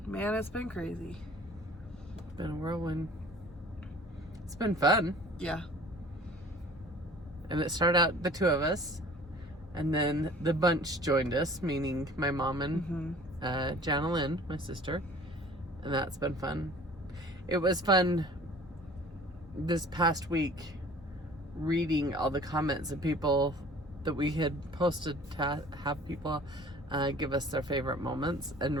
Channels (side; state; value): both; normal; correlation 0.47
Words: man, it's been crazy. It's been a whirlwind. It's been fun. Yeah. And it started out the 2 of us. And then the bunch joined us, meaning my mom and Janalyn, my sister. And that's been fun. It was fun this past week reading all the comments of people that we had posted to have people give us their favorite moments, and